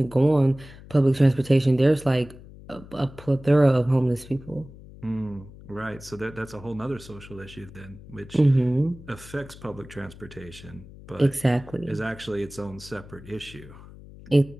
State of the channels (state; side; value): noise; left; hum, 18 dB below the sound